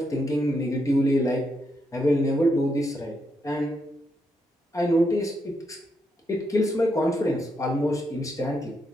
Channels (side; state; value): both; normal; correlation 0.80